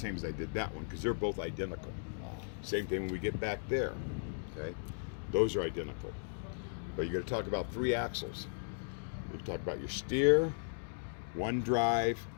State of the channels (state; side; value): silent; right; digital silence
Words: as I did that one, because they're both identical. Same thing when we get back there. Okay? Those are identical. But you got to talk about three axles. You talk about your steer, one drive,